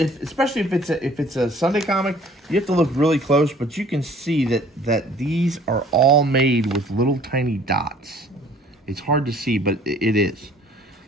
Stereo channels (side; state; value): both; normal; correlation 0.54